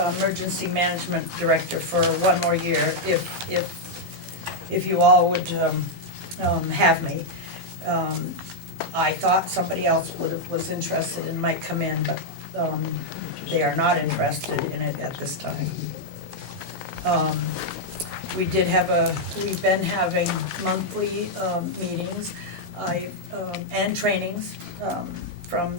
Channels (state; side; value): normal; both; correlation -0.02